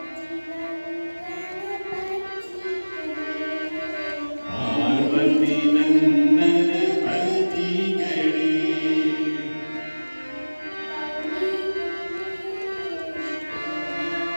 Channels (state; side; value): inverted; both; correlation -1.00